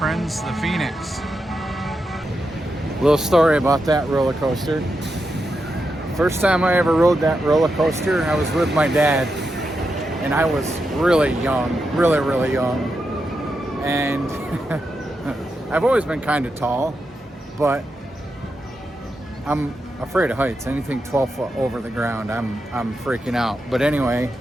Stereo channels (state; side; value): normal; both; correlation 0.86